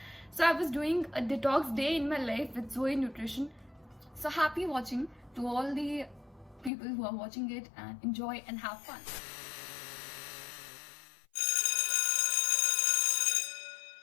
So I was doing a detox day in my life with Zoe Nutrition. So happy watching to all the people who are watching it, and enjoy and have fun.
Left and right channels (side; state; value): right; drops out; at 6.7 s